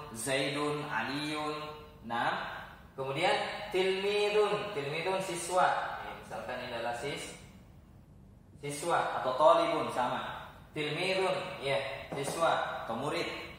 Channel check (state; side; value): identical; both; correlation 1.00